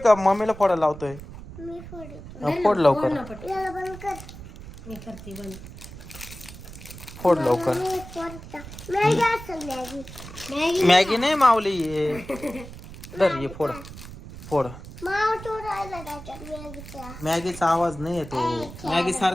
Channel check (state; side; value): noise; right; rumble, 14 dB below the sound